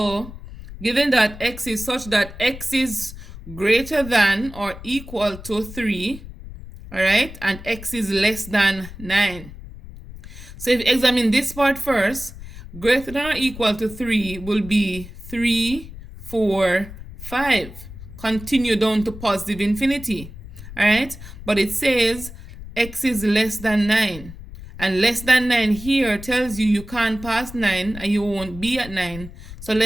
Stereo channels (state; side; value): noise; left; rumble, 14 dB below the sound